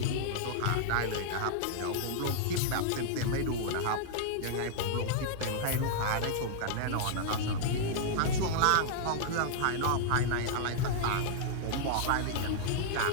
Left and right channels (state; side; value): different; both; correlation -0.01